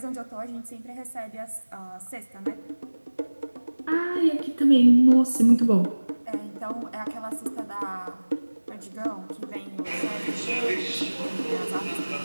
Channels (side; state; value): both; inverted; correlation -1.00